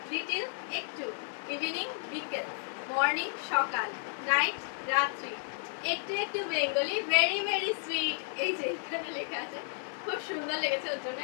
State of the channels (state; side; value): silent; right; digital silence